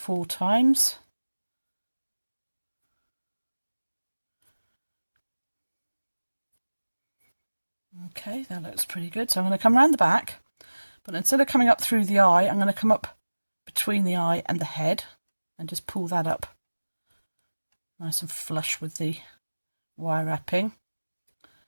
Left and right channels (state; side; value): inverted; both; correlation -1.00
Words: times. Okay, that looks pretty good. So I'm going to come around the back, but instead of coming up through the eye, I'm going to come up between the eye and the head and just pull that up nice and flush with the wire wrapping.